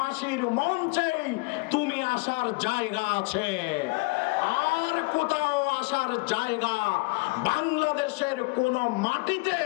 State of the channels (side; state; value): right; quieter; 27.0 dB